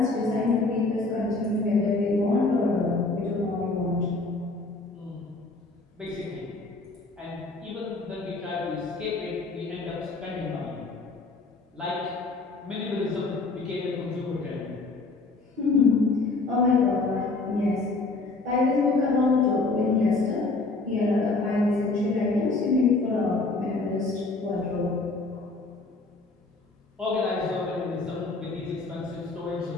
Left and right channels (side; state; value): right; quieter; 3.5 dB